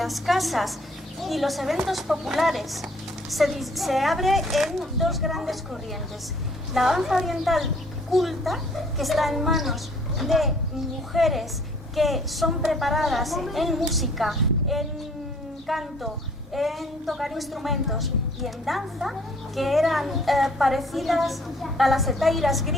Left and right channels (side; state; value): both; normal; correlation 0.58